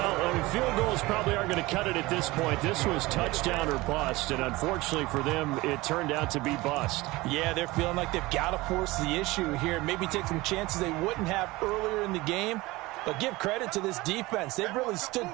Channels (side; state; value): left; quieter; 20.7 dB